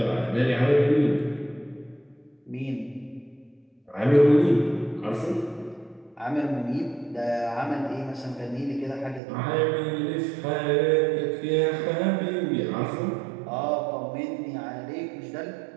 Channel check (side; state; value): left; drops out; at 9.2 s